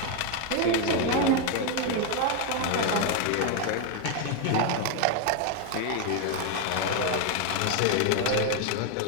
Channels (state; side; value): different; both; correlation 0.01